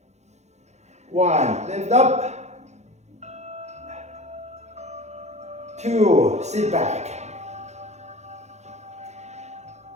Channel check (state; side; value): late; left; 0.33 ms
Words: 1. Lift up. 2. Sit back.